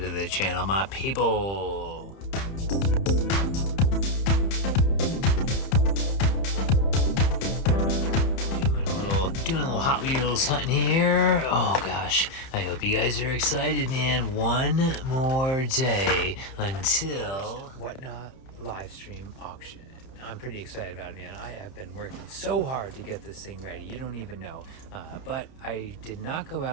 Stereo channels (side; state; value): right; late; 31 ms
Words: the channel, my people. Doing a little Hot Wheels hunting here. Oh gosh, I hope you guys are excited, man. One more day until Whatnot live stream auction. I'm pretty excited about it, man. I have been working so hard to get this thing ready. You don't even know. But I did not go